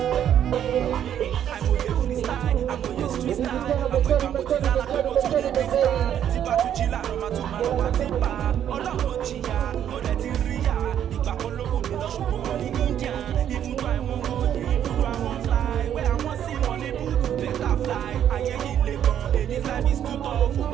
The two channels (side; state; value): left; quieter; 10.0 dB